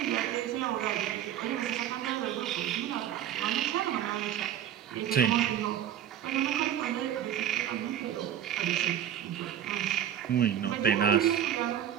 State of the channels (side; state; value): left; quieter; 10.2 dB